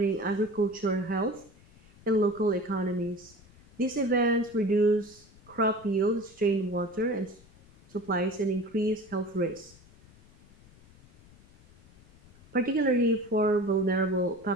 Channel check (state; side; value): noise; left; rumble, 25 dB below the sound